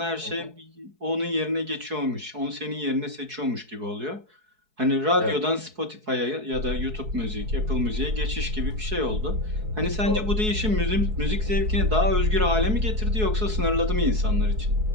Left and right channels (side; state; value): left; late; 4.7 ms